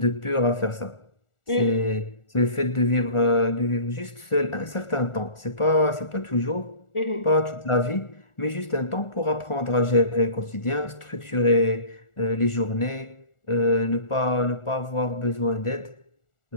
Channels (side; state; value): right; late; 1.4 ms